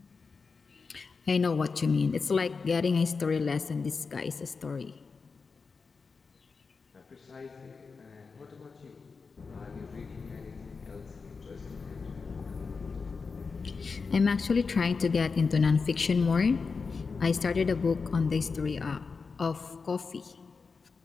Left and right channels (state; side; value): quieter; right; 4.8 dB